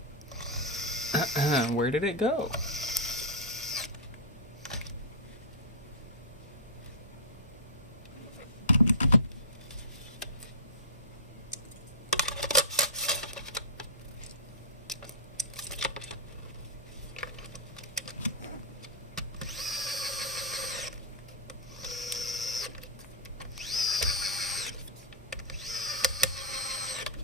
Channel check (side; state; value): both; normal; correlation -0.15